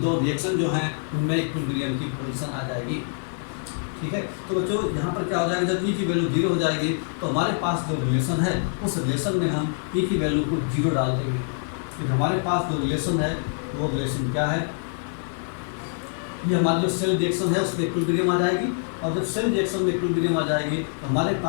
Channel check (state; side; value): silent; right; 60 dB below the other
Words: रिएक्शन जो हैं उनमें इक्विलिब्रियम की पोजीशन आ जाएगी। ठीक है, तो बच्चों यहाँ पर क्या हो जाएगा, जब ई की वैल्यू जीरो हो जाएगी तो हमारे पास जो रिलेशन है उस रिलेशन में हम ई की वैल्यू को जीरो डाल देंगे। फिर हमारे पास जो रिलेशन है वो रिलेशन क्या है, ये हमारी जो सेल रिएक्शन है उसमें इक्विलिब्रियम आ जाएगी। और जब सेल रिएक्शन में इक्विलिब्रियम आ जाएगी तो हमारे